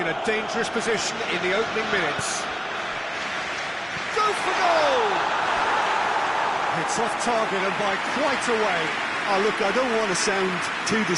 a dangerous position in the opening minutes. Go for goal! It's off target and by quite a way. Oh, look, I don't want to sound too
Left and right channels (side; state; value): both; identical; correlation 1.00